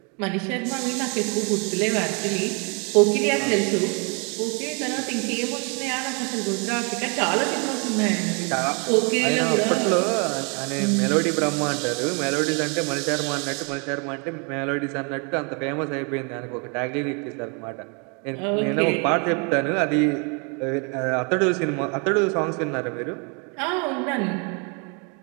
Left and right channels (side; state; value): left; quieter; 34.9 dB